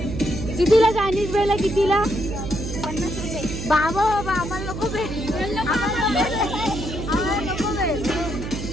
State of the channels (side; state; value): right; noise; hum, 7 dB below the sound